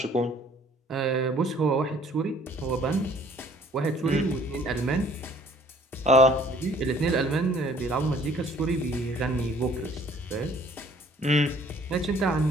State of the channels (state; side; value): normal; both; correlation 0.57